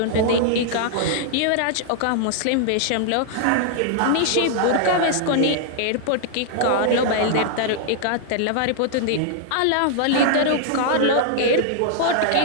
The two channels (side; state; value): both; different; correlation -0.01